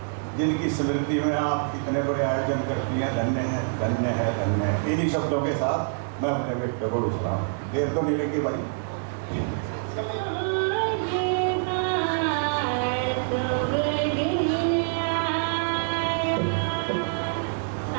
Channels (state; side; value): silent; left; digital silence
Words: जिनकी स्मृति में आप इतने बड़े आयोजन करती हैं, धन्य है, धन्य है, धन्य है। इन्हीं शब्दों के साथ मैं अपने व्यक्ति को विश्राम। देर तो नहीं लगी भाई।